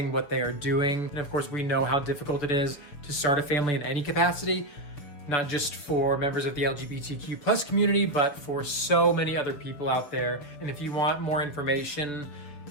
what they are doing. And of course, we know how difficult it is to start a family in any capacity, not just for members of the LGBTQ+ community, but for so many other people out there. And if you want more information,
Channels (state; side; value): late; right; 6.9 ms